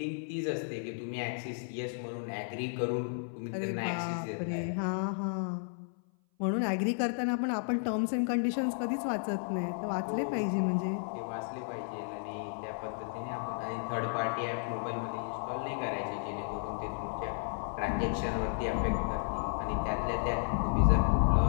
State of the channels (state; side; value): silent; right; 56 dB below the other